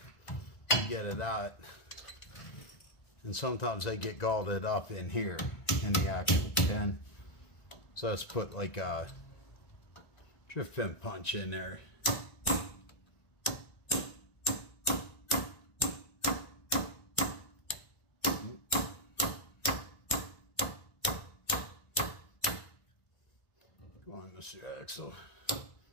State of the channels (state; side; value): late; right; 1.5 ms